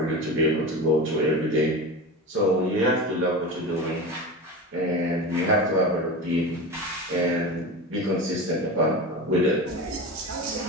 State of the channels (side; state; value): both; normal; correlation 0.27